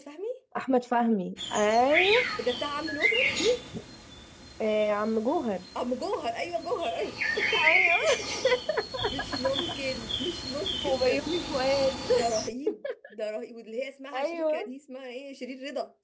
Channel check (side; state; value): both; identical; correlation 1.00